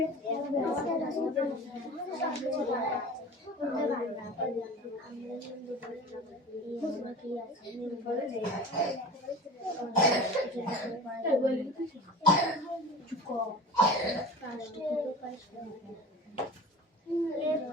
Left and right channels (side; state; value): both; normal; correlation 0.36